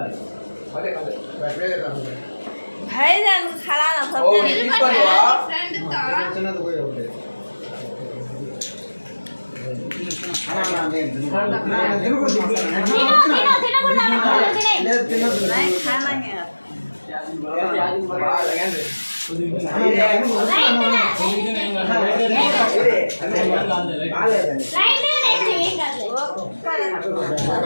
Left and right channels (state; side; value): inverted; both; correlation -1.00